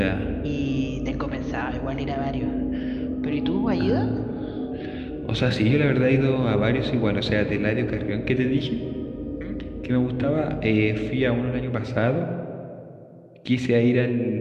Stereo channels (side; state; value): both; identical; correlation 1.00